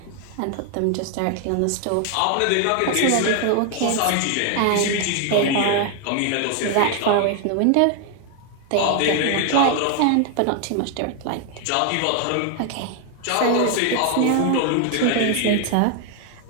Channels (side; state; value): both; different; correlation 0.00